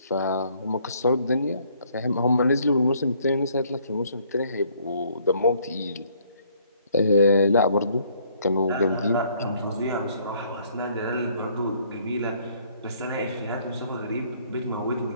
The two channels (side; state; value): both; inverted; correlation -0.64